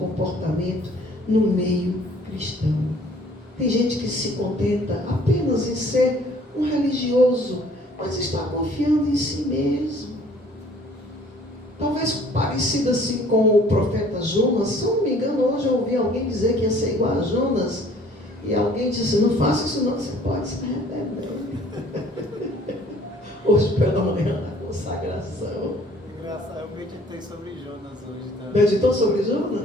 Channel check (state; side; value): normal; both; correlation 0.56